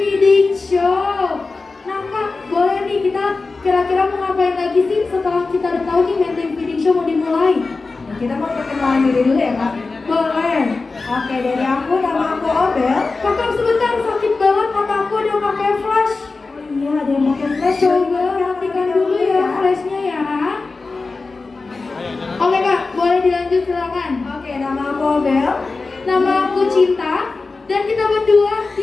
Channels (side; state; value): right; quieter; 3.9 dB